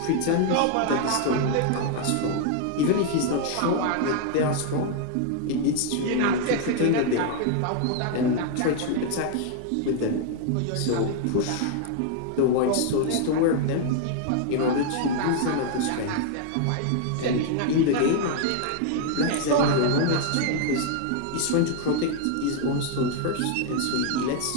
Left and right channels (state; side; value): different; both; correlation 0.00